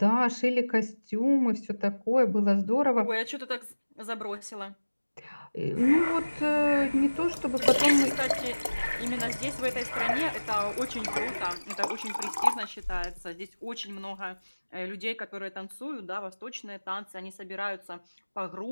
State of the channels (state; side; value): inverted; both; correlation -1.00